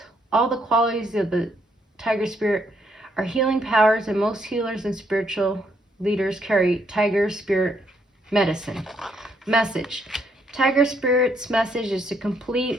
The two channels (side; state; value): both; normal; correlation 0.73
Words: all the qualities of the Tiger Spirit are healing powers, and most healers and spiritual leaders carry Tiger Spirit medicine. Message. Tiger Spirit's message is to